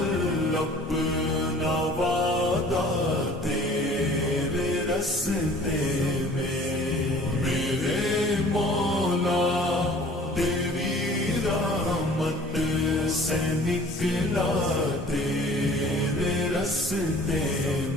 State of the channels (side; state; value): both; normal; correlation 0.49